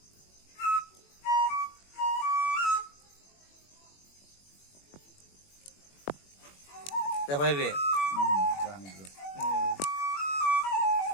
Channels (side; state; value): right; late; 21 ms